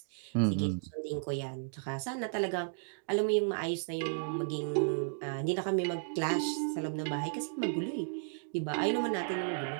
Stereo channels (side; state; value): left; silent; digital silence